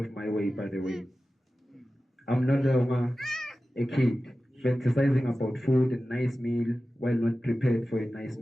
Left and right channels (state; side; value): normal; both; correlation 0.95